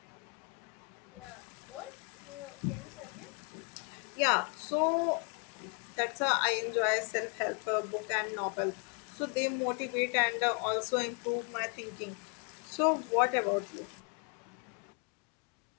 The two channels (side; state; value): right; quieter; 35.0 dB